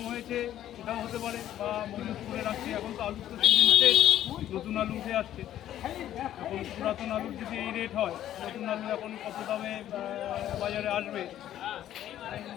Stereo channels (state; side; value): quieter; right; 12.0 dB